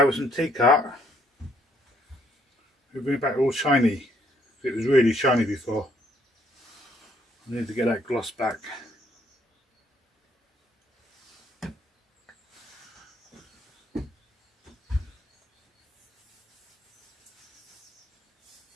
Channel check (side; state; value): both; normal; correlation 0.68